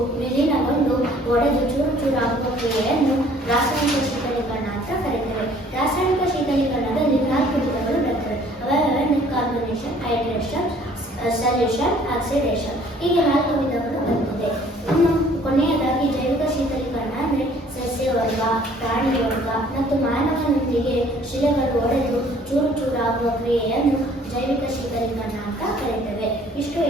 ವಿಲೀನಗೊಂಡು ಒಡೆದು ಚೂರಾಗುವ ಕ್ರಿಯೆಯನ್ನು ರಾಸಾಯನಿಕ ಶೀತಲೀಕರಣ ಅಂತ ಕರೆಯುತ್ತೇವೆ. ರಾಸಾಯನಿಕ ಶೀತಲೀಕರಣದಲ್ಲಿ 4 ವಿಧಗಳು ಬರ್ತವೆ. ಅವೆಂದರೆ ಕಾರ್ಬನೇಷನ್, ಹೈಡ್ರೇಷನ್, ಸಲ್ಯೂಷನ್, ಆಕ್ಸಿಡೇಷನ್. ಹೀಗೆ 4 ವಿಧಗಳು ಬರ್ತದೆ. ಇನ್ನು ಕೊನೆಯದಾಗಿ ಜೈವಿಕ ಶೀತಲೀಕರಣ ಅಂದರೆ ಸಸ್ಯವರ್ಗ, ಪ್ರಾಣಿ ವರ್ಗ ಮತ್ತು ಮಾನವನೊಂದಿಗೆ ಶಿಲೆಗಳು ಒಡೆದು ಚೂರಾಗುವ ಕ್ರಿಯೆಯನ್ನು ಜೈವಿಕ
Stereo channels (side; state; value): both; normal; correlation 0.56